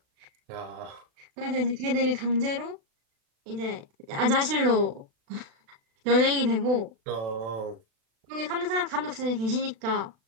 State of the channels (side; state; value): left; late; 36 ms